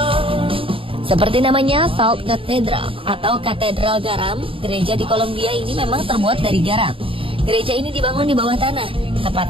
Seperti namanya, Salt Cathedral atau Katedral Garam, gereja di Kolombia ini memang terbuat dari garam. Gereja ini dibangun di bawah tanah,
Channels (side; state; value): left; late; 0.26 ms